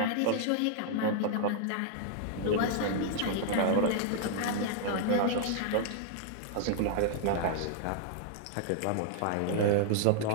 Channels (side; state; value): both; different; correlation -0.01